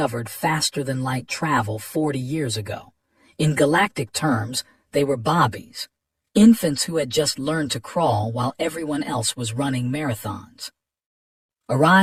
faster-than-light travel 40 years ago. In galactic terms, they were bobbies, infants who had just learned to crawl while everyone else was running marathons.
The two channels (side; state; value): both; identical; correlation 1.00